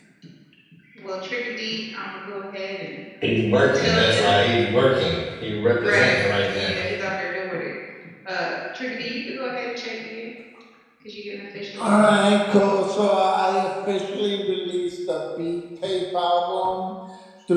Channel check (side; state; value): both; identical; correlation 1.00